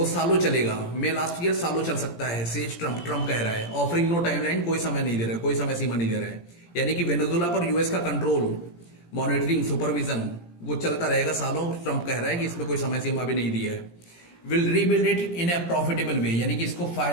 सालों चलेगा. मे last year सालों चल सकता है, सेज ट्रम्प. ट्रम्प कह रहा है, ऑफरिंग नो टाइमलाइन, कोई समय नहीं दे रहा है, कोई समय सीमा नहीं दे रहा है. यानी कि वेनेजुला पर यूएस का कंट्रोल, मॉनिटरिंग, सुपरविजन वो चलता रहेगा सालों. ट्रम्प कह रहा है कि इसमें कोई समय सीमा भी नहीं दिया है. Will rebuild it in a profitable way, यानी कि इसको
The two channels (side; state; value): right; late; 17 ms